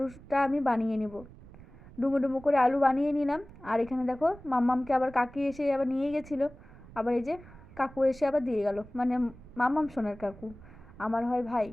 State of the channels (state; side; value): noise; right; rumble, 19 dB below the sound